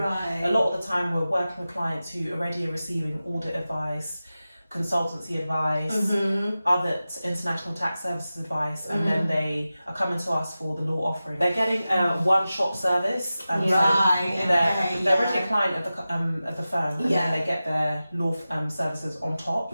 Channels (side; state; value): both; inverted; correlation -0.95